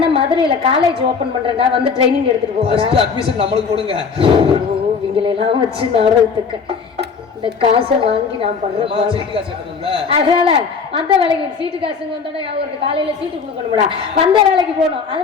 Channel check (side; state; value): right; quieter; 5.5 dB